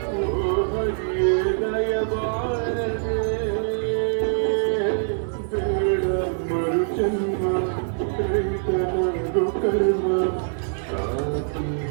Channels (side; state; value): left; silent; 55 dB below the other